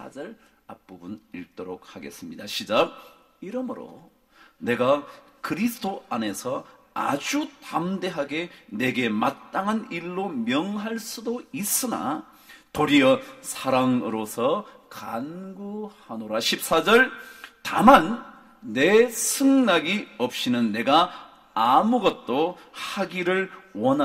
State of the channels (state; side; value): identical; both; correlation 1.00